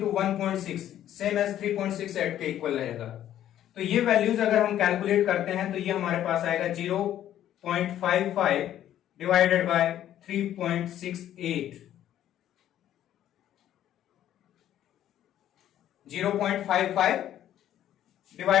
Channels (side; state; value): right; quieter; 11.6 dB